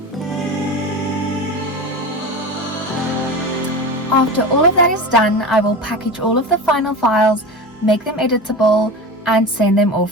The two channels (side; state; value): both; normal; correlation 0.28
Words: After all of that is done, I will package all of the final files, make them editable, and send them